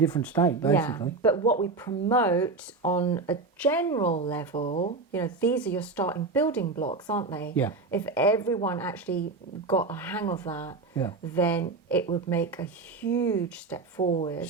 state, basically. Yeah, but what we promote on a general level, you know, these are your starting building blocks, aren't they? Yeah. If everyone actually got a hang of that, then it would make a huge step forward.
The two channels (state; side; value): quieter; left; 3.8 dB